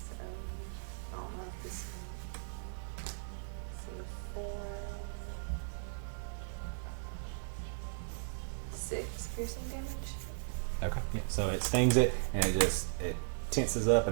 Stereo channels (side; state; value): left; silent; 53 dB below the other